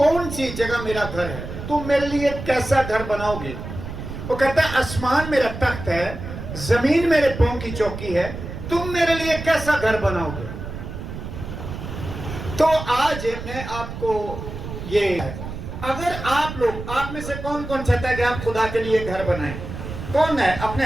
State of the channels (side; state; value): right; noise; rumble, 9 dB below the sound